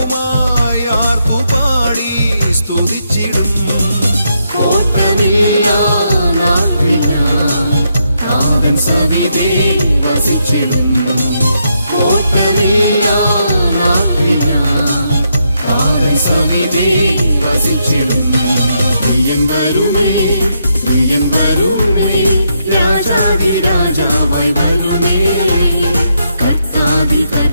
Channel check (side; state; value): both; inverted; correlation -0.79